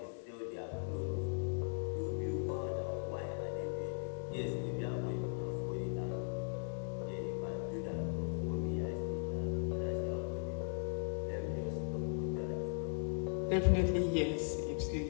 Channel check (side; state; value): right; silent; digital silence